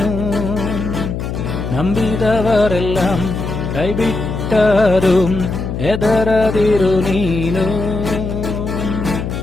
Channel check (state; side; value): noise; left; hum, 4 dB below the sound